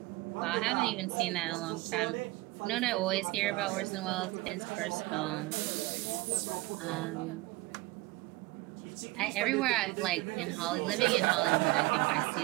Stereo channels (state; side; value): quieter; left; 21.1 dB